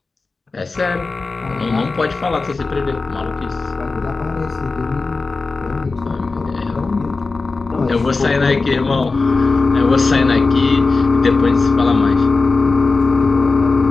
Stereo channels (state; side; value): quieter; right; 3.9 dB